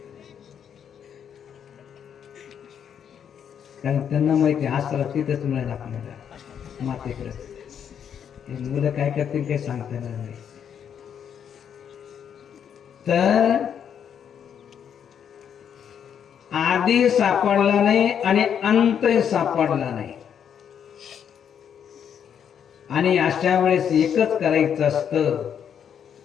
कारण त्यांना माहिती आसरा तिथेच मिळेल आपल्याला, मातेकडे. मुलं काय करतील काही सांगता येणार नाही. तर आधी सापडला नाही आणि अंतही सापडला नाही, आणि अशा वेळेस एकच करायचं असतं,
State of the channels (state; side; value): quieter; right; 8.3 dB